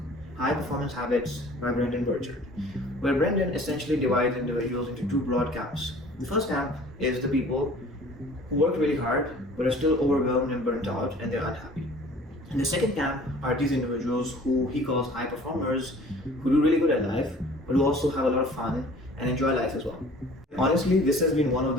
High Performance Habits by Brendon Burchard, where Brendon essentially divides individuals into two broad camps. The first camp is the people who work really hard but are still overwhelmed and burnt out and they're unhappy. And the second camp are these individuals who he calls high performers, who do really good at life but who also have a lot of fun and enjoy life as well. Honestly, this has been one of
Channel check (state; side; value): normal; both; correlation 0.49